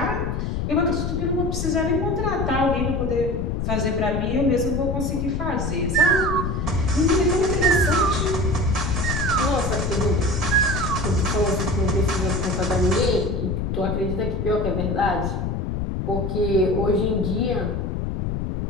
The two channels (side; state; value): left; noise; rumble, 1 dB below the sound